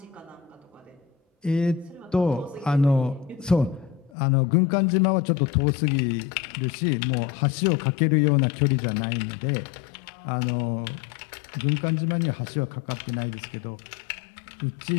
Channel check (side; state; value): right; drops out; at 4.1 s